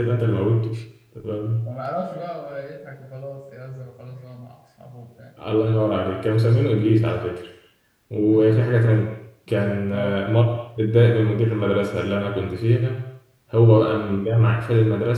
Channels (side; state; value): both; identical; correlation 1.00